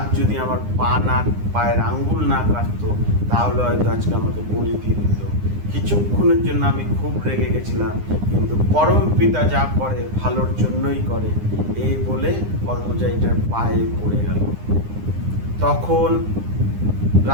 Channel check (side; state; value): left; late; 9.8 ms